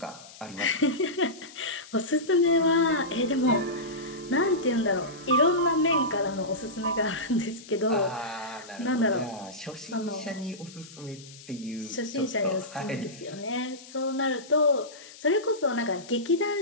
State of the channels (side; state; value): left; noise; hiss, 19 dB below the sound